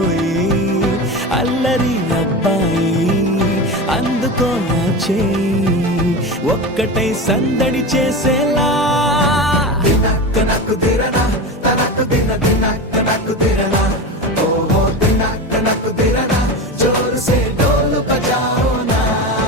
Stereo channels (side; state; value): both; normal; correlation 0.25